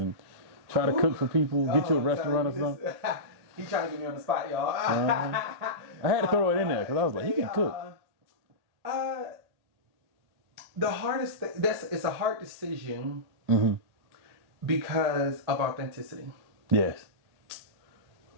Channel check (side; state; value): left; late; 1.9 ms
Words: try to cook for people, get you a restaurant or something? He trying to get me on the spot, y'all. I had to throw it in there because I was like, he can cook. The hardest thing, it's a hard decision because of authenticity. Yes.